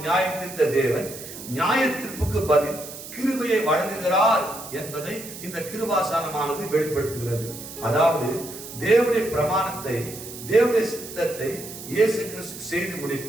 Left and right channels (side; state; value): right; noise; hiss, 12 dB below the sound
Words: தீர்த்த தேவன் நியாய தீர்ப்புக்கு பதில் கிருபையை வழங்குகிறார் என்பதை இந்த கிருபாசனமானது வெளிப்படுத்துகிறது. அதாவது தேவனுடைய பிரமாணத்தை, தேவனுடைய சித்தத்தை இயேசு கிறிஸ்து செய்து